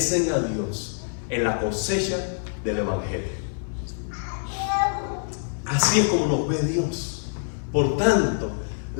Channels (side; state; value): right; silent; 58 dB below the other